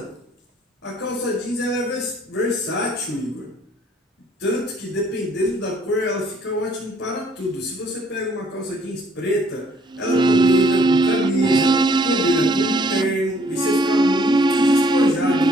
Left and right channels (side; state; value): both; normal; correlation 0.62